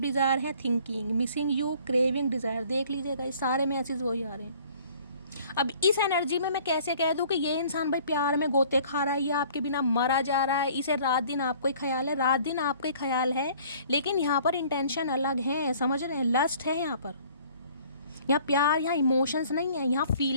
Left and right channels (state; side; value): inverted; both; correlation -0.54